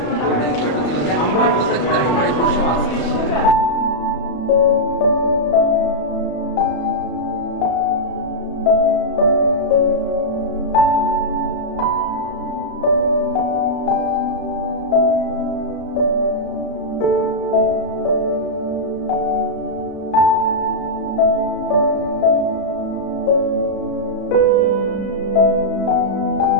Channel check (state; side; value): late; right; 33 ms